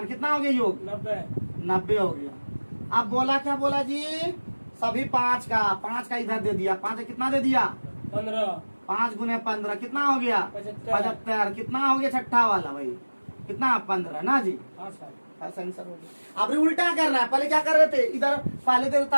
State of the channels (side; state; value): both; inverted; correlation -1.00